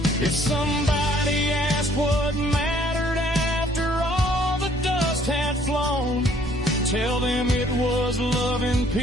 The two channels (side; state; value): both; normal; correlation 0.61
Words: If somebody asked what mattered after all the dust had flown, tell them it was loving